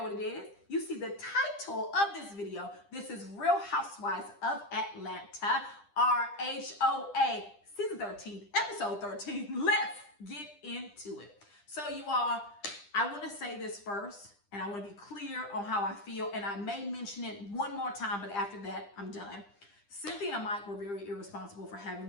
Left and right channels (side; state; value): right; late; 9.9 ms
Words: what it is. You see the title of this video. This is Real Housewives of Atlanta, RHOA, season 13, episode 13. Let's get into it. So you all, I want to say this first, and I want to be clear on how I feel, and I may mention it one more time, but after that, I'm done. Cynthia and Mike were very irresponsible for